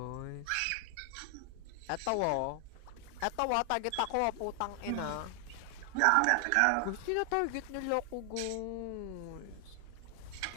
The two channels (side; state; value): both; different; correlation 0.00